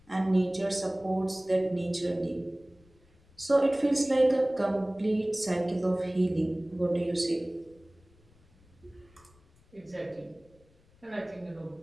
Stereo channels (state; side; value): noise; left; rumble, 30 dB below the sound